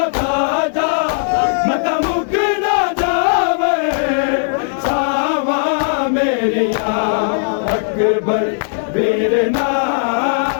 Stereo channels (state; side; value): silent; right; digital silence